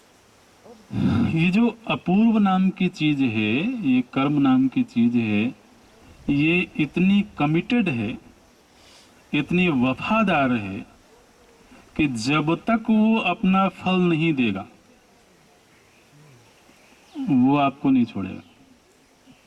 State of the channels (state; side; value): identical; both; correlation 1.00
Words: ये जो अपूर्व नाम की चीज है, ये कर्म नाम की चीज है, ये इतनी कमिटेड है, इतनी वफादार है कि जब तक वो अपना फल नहीं देगा वो आपको नहीं छोड़ेगा।